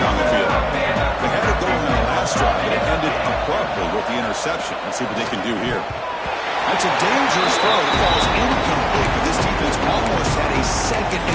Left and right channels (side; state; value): both; identical; correlation 1.00